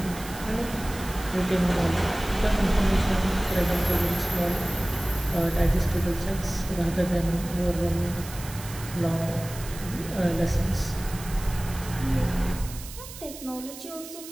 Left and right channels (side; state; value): right; noise; hiss, 14 dB below the sound